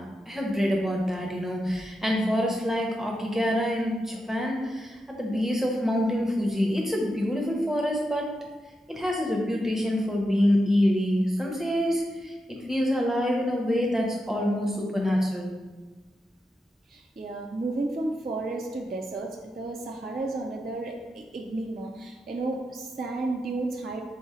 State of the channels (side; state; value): both; normal; correlation 0.87